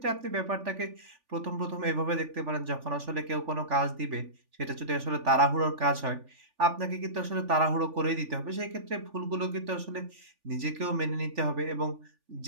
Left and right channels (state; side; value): late; left; 3.5 ms